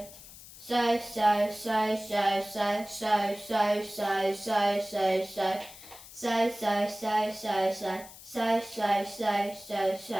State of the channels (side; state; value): left; noise; hiss, 17 dB below the sound